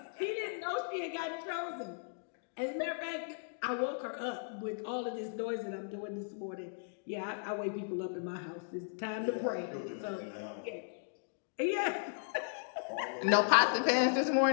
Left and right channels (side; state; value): right; silent; digital silence